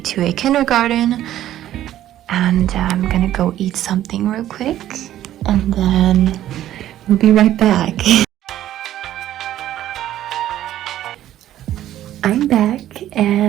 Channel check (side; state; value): left; quieter; 12.7 dB